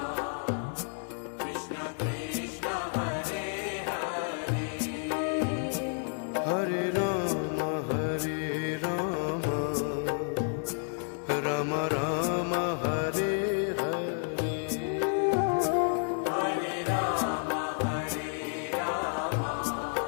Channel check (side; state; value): right; silent; 57 dB below the other